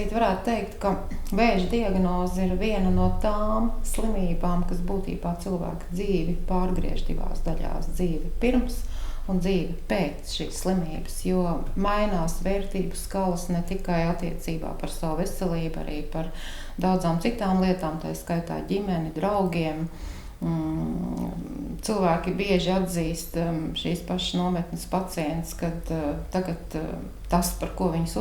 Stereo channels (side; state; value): both; identical; correlation 1.00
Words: varētu teikt, ka vēža diagnoze ir viena no tām slimībām, kas būtībā cilvēka dzīvi pārgriež 2 daļās: dzīvi pirms un dzīve pēc šīs slimības, jo mainās vērtību skalas ne tikai attiecībā par savu veselību, arī par daudzām citām lietām, tā skaitā ģimeni, draugiem. Cilvēki bieži atzīst šīs pašas nometnes pacients, kad tagad tas, par ko viņas